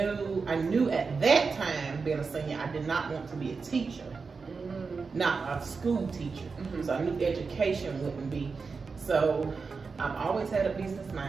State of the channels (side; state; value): left; quieter; 4.8 dB